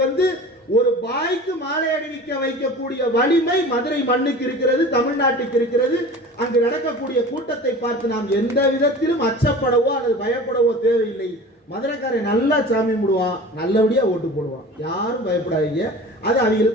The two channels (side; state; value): both; normal; correlation 0.38